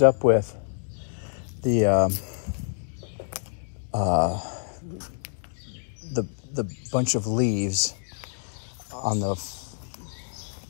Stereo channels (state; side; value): silent; right; digital silence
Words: up with the bunch of leaves on